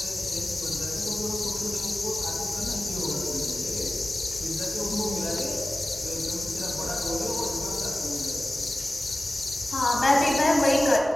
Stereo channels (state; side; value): normal; both; correlation 0.95